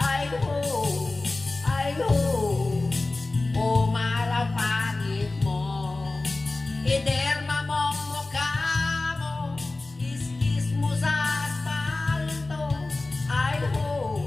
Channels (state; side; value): quieter; right; 3.2 dB